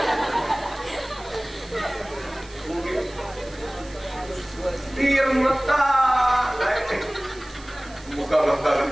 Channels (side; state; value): right; noise; hiss, 21 dB below the sound